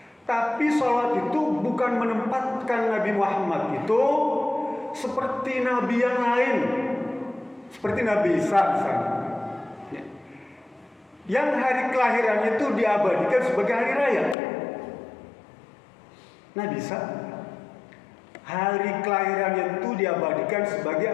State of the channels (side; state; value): right; drops out; at 14.4 s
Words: Tapi solat itu bukan menempatkan Nabi Muhammad itu seperti nabi yang lain. Seperti Nabi Isa misalnya, ya, yang hari kelahirannya itu diabadikan sebagai hari raya. Nabi Isa hari kelahirannya itu diabadikan sebagai